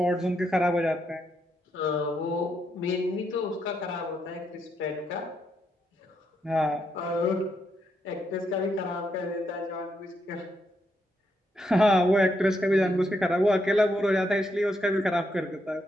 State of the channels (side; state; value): both; normal; correlation 0.79